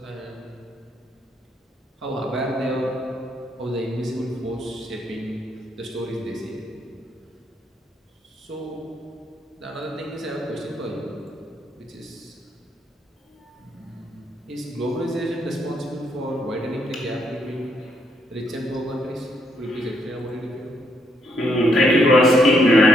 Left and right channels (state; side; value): normal; both; correlation 0.74